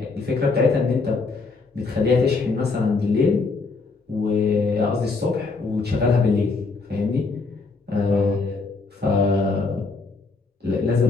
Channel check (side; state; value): right; quieter; 4.0 dB